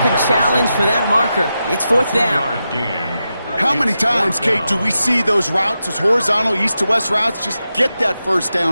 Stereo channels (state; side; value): inverted; both; correlation -0.89